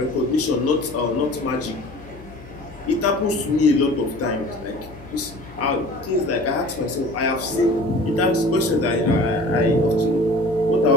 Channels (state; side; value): noise; left; hum, 19 dB below the sound